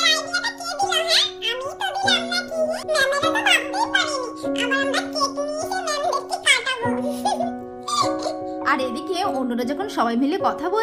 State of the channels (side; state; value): both; identical; correlation 1.00